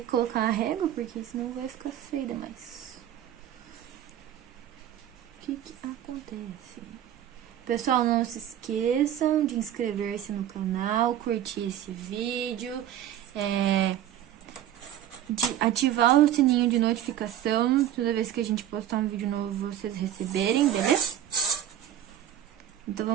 colocar a régua, porque senão vai ficar feio demais. O que acontece? Pessoal, não se esqueçam de inscrever-se no canal, curtir esse vídeo, de ativar o sininho de notificação, toda vez que a gente postar um vídeo novo, vocês receberem, beleza? Então,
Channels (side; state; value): left; quieter; 11.1 dB